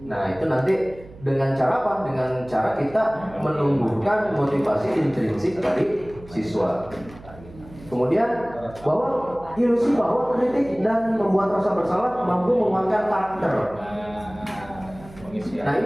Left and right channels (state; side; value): noise; right; hum, 20 dB below the sound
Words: Nah, itu nanti dengan cara apa? Dengan cara kita menumbuhkan motivasi intrinsik dari siswa. Kemudian ilusi bahwa kritik dan membuat rasa bersalah mampu menguatkan karakter. Nah,